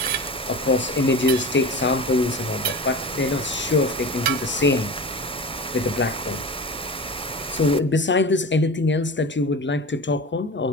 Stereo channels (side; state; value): both; normal; correlation 0.31